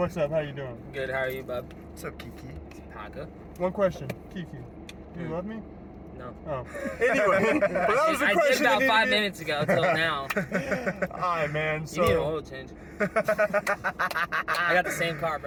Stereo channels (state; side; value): identical; both; correlation 1.00